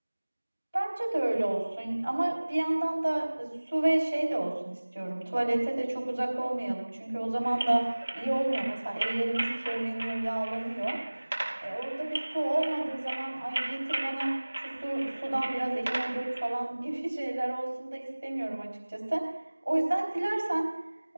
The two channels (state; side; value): inverted; both; correlation -1.00